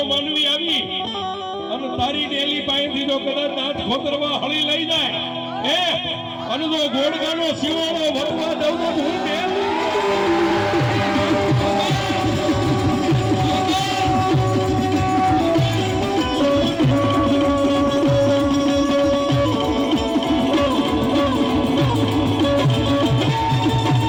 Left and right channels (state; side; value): identical; both; correlation 1.00